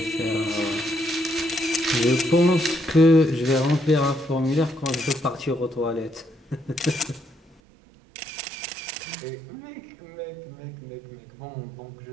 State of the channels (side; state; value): left; drops out; at 7.6 s